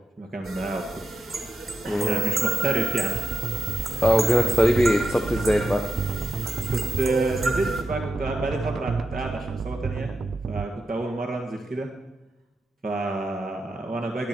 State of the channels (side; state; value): both; normal; correlation 0.87